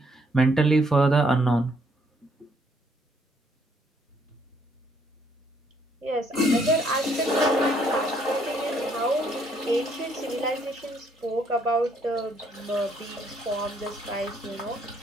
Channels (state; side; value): normal; both; correlation 0.68